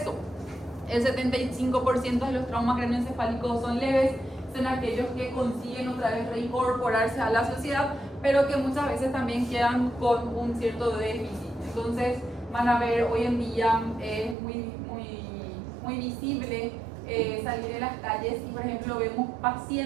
El 75% de los traumas craneoencefálicos son leves, son aquellos que consiguen otra vez reincorporarse a la sociedad, pero que muchas veces también quedan con un cierto déficit. Entonces van a ver, hoy en día es muy visible salir de las calles y, por ejemplo, vemos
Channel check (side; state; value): left; drops out; at 14.4 s